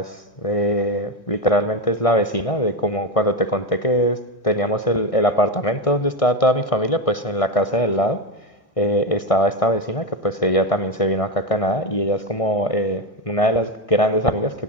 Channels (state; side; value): late; right; 1.6 ms